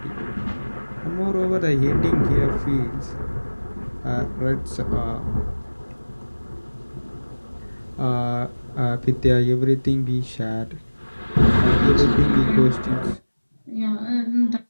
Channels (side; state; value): both; inverted; correlation -1.00